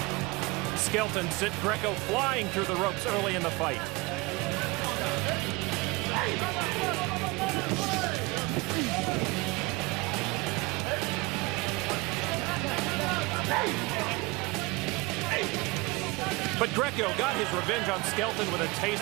Skelton sent Greco flying through the ropes early in the fight. But Greco got his revenge on Skelton with a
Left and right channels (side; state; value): left; quieter; 24.2 dB